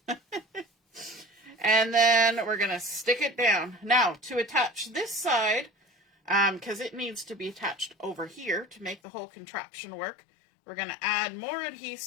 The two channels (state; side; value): drops out; right; at 9.0 s